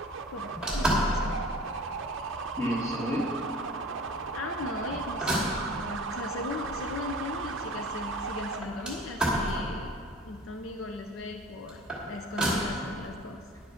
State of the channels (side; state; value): both; normal; correlation 0.43